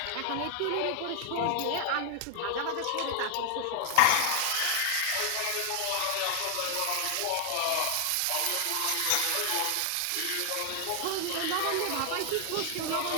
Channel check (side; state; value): both; different; correlation 0.00